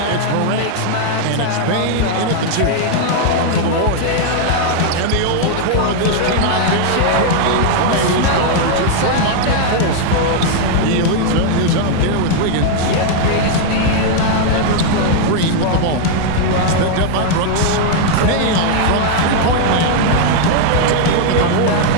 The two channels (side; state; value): both; different; correlation 0.00